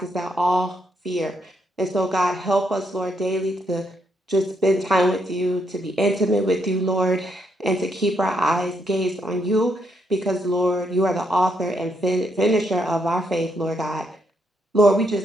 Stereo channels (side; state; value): both; normal; correlation 0.77